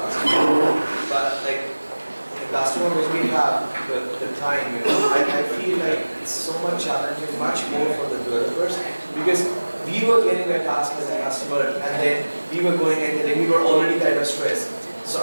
but like the customer when we have the time, I feel like it's so much challenging, much more for the developers, because we were getting a task as a customer and then we were going and then we were already kind of stressed. So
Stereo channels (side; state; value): both; inverted; correlation -1.00